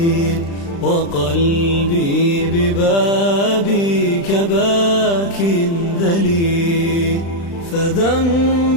وقلبي ببابك باك ذليل،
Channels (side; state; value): right; late; 35 ms